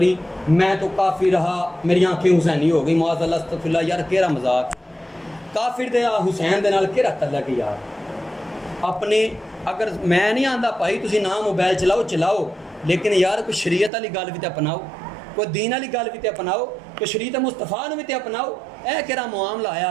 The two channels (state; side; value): drops out; left; at 13.9 s